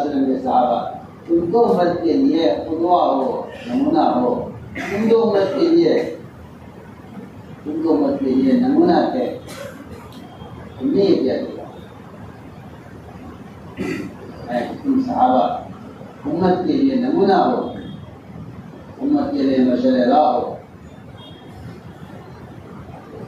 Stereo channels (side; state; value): both; identical; correlation 1.00